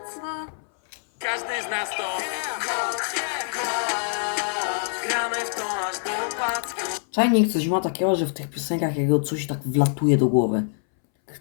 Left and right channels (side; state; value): right; silent; 62 dB below the other